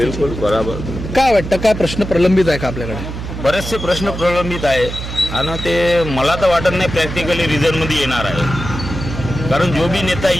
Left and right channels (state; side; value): noise; right; hum, 7 dB below the sound